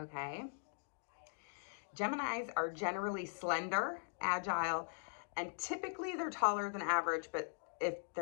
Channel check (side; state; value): right; silent; digital silence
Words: Geminis are generally slender, agile, and typically they're taller than average, but if